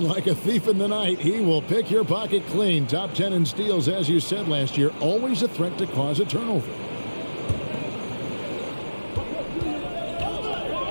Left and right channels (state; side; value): inverted; both; correlation -1.00